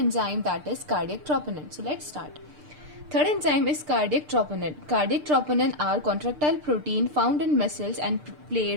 that is cardiac troponin. So let's start. Third enzyme is cardiac troponin. Cardiac troponin are contractile protein found in muscles and play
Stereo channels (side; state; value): left; late; 6.7 ms